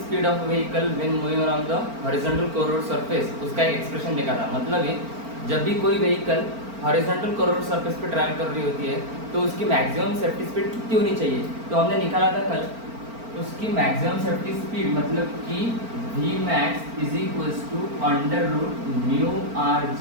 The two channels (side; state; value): left; late; 4.4 ms